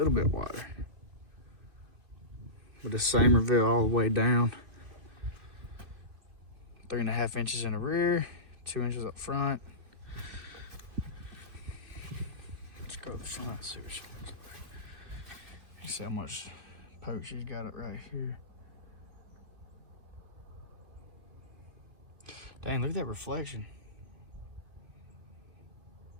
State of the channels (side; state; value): left; late; 2.6 ms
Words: But the same reveal all the way down. 3.5 inches in the rear, 2 inches up front. Let's go to the front, see what she looks like. You see how much poke she's got it right here. Dang, look at that reflection.